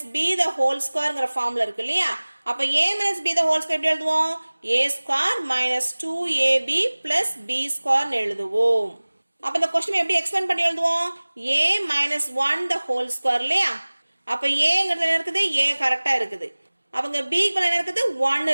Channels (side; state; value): both; inverted; correlation -1.00